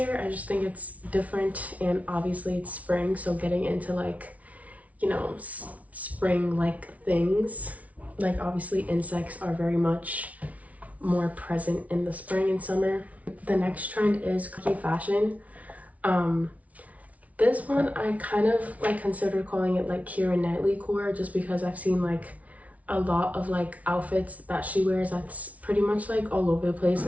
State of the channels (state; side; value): late; left; 0.068 ms